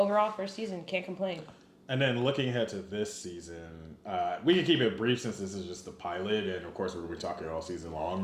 first season, can't complain. And then looking ahead to this season, we can keep it brief since this is just the pilot, and of course we're going to be talking all season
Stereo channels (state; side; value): identical; both; correlation 1.00